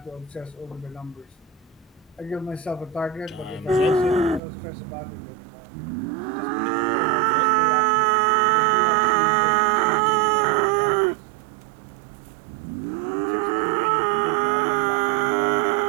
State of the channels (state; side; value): drops out; left; at 4.4 s